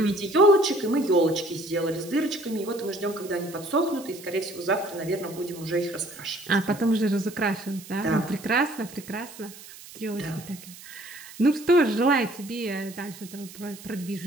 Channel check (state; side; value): noise; right; hiss, 17 dB below the sound